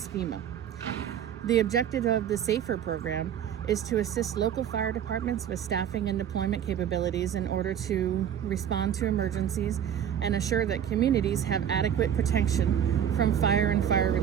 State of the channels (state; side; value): quieter; left; 9.4 dB